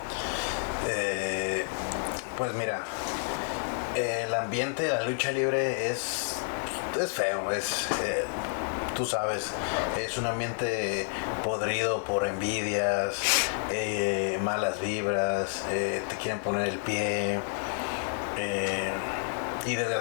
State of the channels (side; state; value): right; silent; digital silence